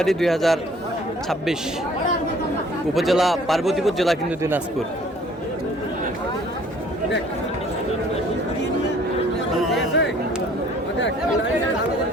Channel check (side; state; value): both; normal; correlation 0.56